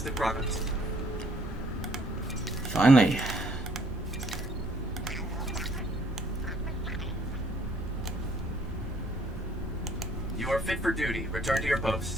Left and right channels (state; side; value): normal; both; correlation 0.63